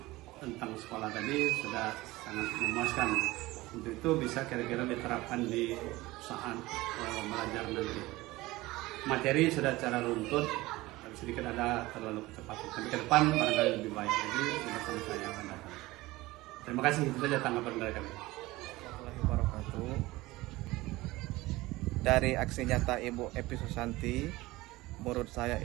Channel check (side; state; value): left; quieter; 19.5 dB